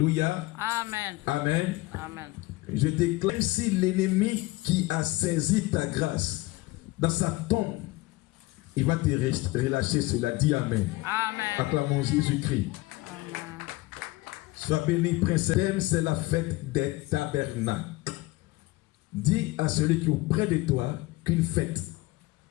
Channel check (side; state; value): right; quieter; 20.3 dB